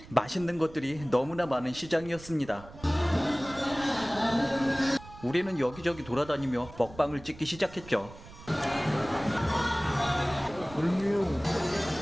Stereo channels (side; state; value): right; noise; rumble, 18 dB below the sound